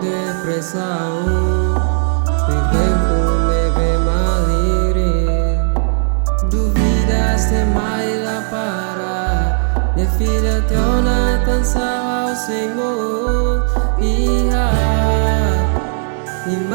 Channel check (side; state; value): left; silent; digital silence